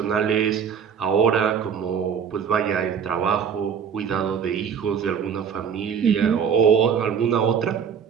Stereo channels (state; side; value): quieter; left; 7.3 dB